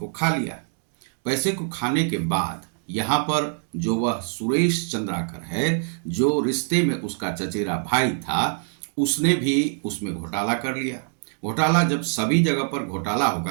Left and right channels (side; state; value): left; silent; 62 dB below the other